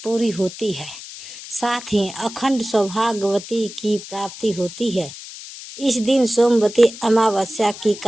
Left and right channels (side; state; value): left; noise; hiss, 13 dB below the sound